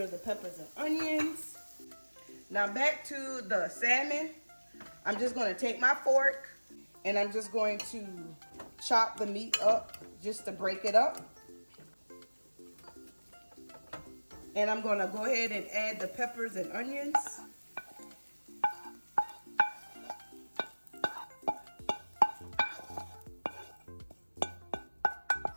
the peppers and onions. Now back to the salmon. I'm just going to take my fork and I'm just going to chop the meat up just to break it up. And I'm going to go ahead and add the peppers and onions.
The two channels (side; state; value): both; inverted; correlation -1.00